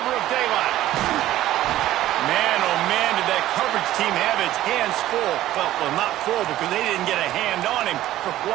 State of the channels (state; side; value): quieter; left; 14.2 dB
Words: of daylight. Man, oh man, did that coverage team have its hands full. Well, not full because they didn't get a hand on him for